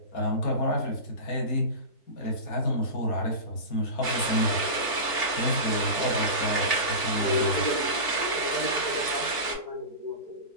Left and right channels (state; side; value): late; right; 3.5 ms